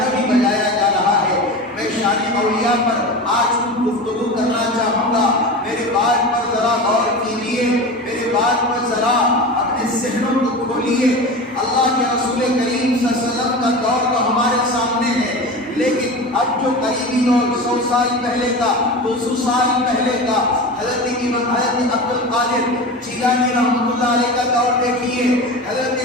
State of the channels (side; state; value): both; normal; correlation 0.29